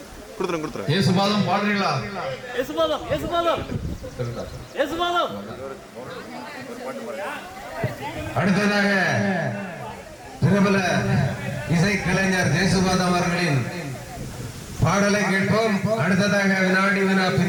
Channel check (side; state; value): both; identical; correlation 1.00